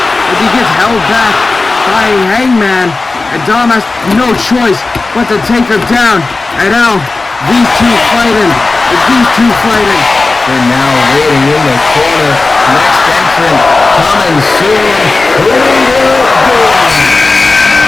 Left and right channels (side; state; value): right; quieter; 3.6 dB